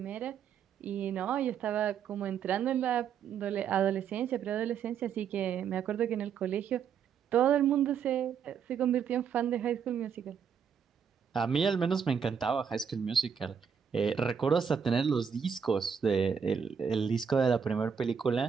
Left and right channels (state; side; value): quieter; left; 7.2 dB